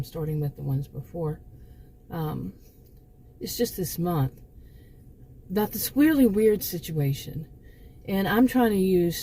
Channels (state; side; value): identical; both; correlation 1.00